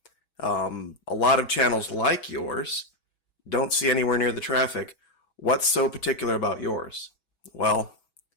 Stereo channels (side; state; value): right; late; 6.2 ms